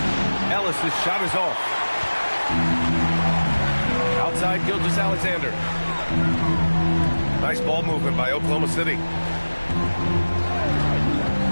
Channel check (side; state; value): both; inverted; correlation -1.00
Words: Ellis' shot is off. Outside Gilgeous-Alexander. Nice ball movement by Oklahoma City.